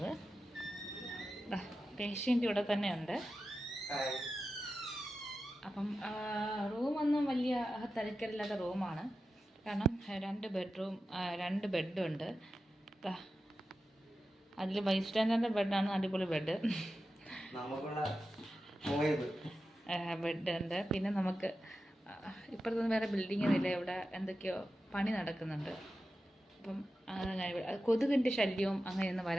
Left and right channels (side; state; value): both; normal; correlation 0.92